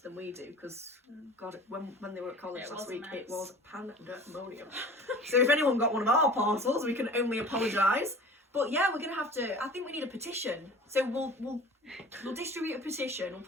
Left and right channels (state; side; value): normal; both; correlation 0.41